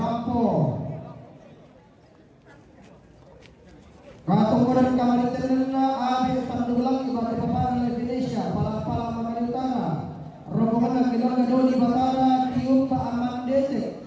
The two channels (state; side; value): identical; both; correlation 1.00